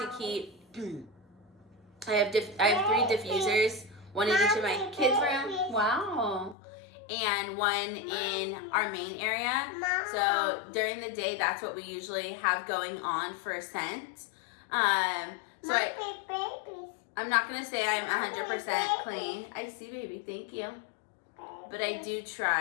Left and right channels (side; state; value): right; drops out; at 6.6 s